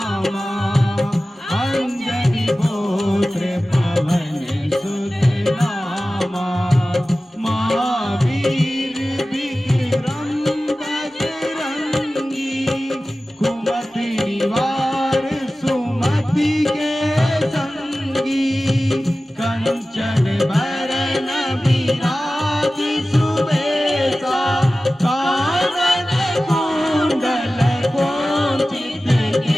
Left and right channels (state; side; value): normal; both; correlation 0.96